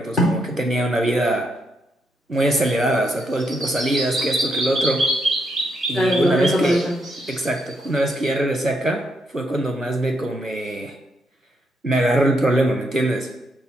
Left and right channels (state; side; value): normal; both; correlation 0.78